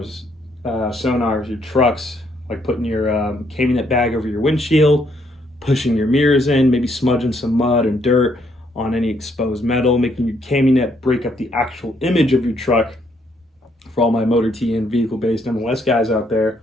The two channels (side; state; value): both; normal; correlation 0.71